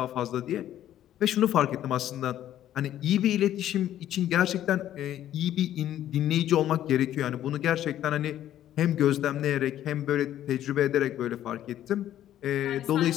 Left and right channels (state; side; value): quieter; right; 12.0 dB